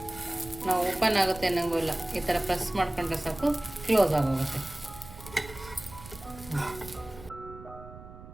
ನಾವು ಓಪನ್ ಆಗುತ್ತೆ ಅನ್ನಂಗೂ ಇಲ್ಲ, ಈ ಥರ ಪ್ರೆಸ್ ಮಾಡ್ಕೊಂಡ್ರೆ ಸಾಕು ಕ್ಲೋಸ್ ಆಗೋಗುತ್ತೆ.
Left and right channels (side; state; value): right; noise; rumble, 16 dB below the sound